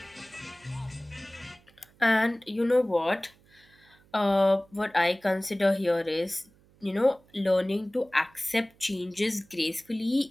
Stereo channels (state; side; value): noise; right; hum, 30 dB below the sound